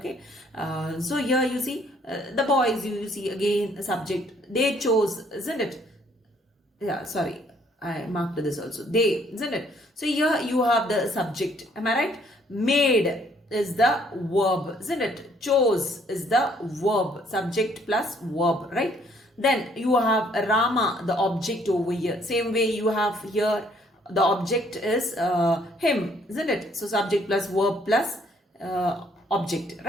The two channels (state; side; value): normal; both; correlation 0.64